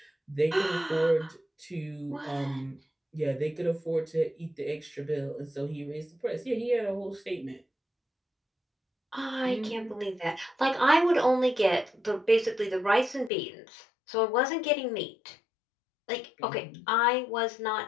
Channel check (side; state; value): right; drops out; at 13.3 s